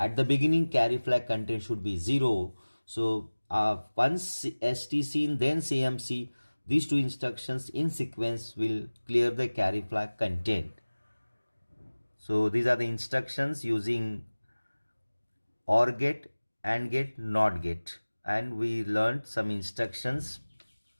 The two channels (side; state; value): both; inverted; correlation -1.00